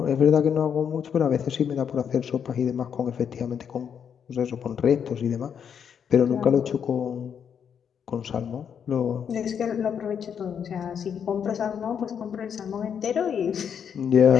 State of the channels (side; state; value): right; quieter; 7.7 dB